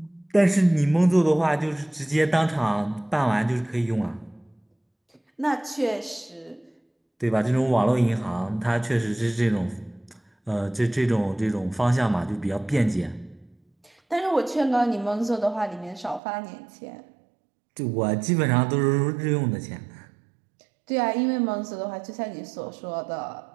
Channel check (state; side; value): drops out; left; at 16.2 s